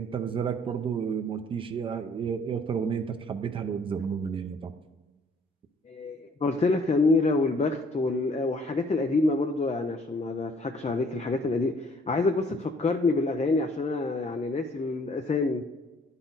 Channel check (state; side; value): normal; both; correlation 0.59